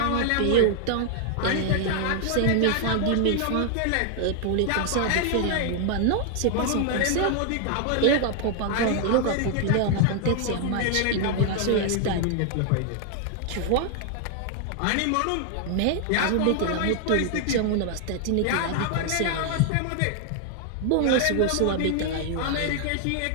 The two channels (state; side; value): different; both; correlation 0.00